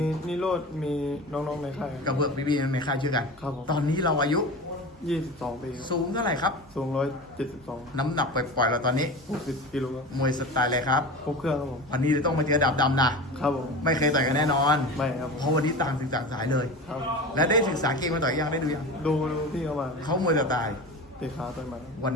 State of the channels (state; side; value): normal; both; correlation 0.30